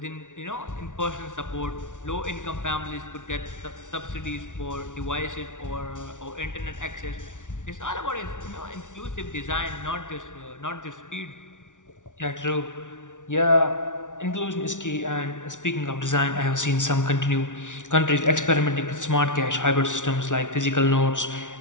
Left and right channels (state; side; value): late; right; 0.87 ms